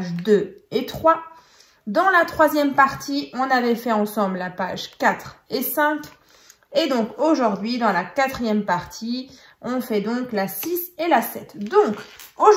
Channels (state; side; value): identical; both; correlation 1.00